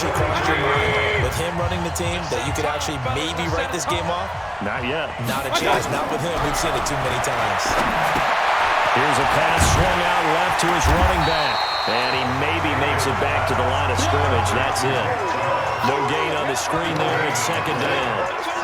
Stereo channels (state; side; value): identical; both; correlation 1.00